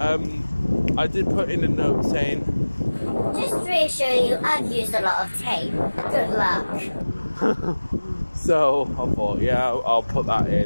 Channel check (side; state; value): both; inverted; correlation -1.00